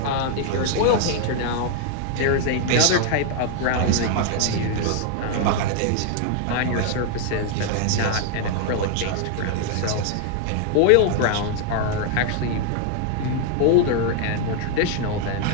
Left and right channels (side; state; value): both; different; correlation 0.00